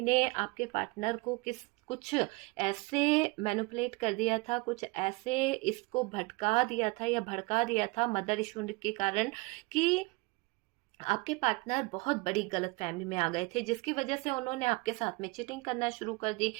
ने आपके पार्टनर को कुछ ऐसे मैनिपुलेट कर दिया था, कुछ ऐसे इसको भटका दिया था या भड़का दिया था मदर इशू के कारण, कि आपके पार्टनर बहुत बड़ी गलतफहमी में आ गए थे, जिसकी वजह से उन्होंने आपके साथ में चीटिंग करना शुरू कर दी,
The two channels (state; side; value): quieter; left; 25.6 dB